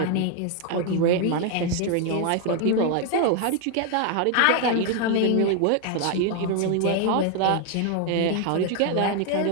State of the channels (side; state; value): both; different; correlation 0.00